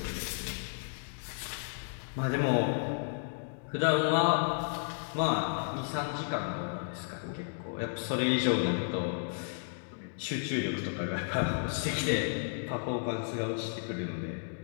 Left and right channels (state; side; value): silent; right; digital silence